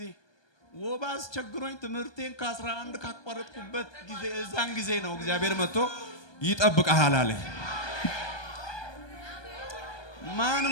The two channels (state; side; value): late; right; 1.2 ms